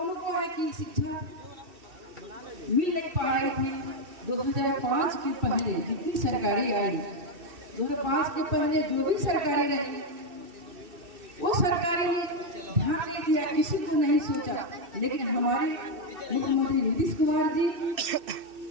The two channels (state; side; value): late; left; 2.7 ms